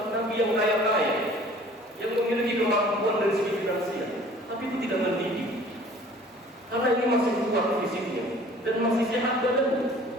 Nabi yang kaya-kaya, yang memiliki kemampuan dari segi finansial. tapi tidak mendidik. Karena ini masih kuat fisiknya dan masih sehat badannya.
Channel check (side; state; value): both; normal; correlation 0.50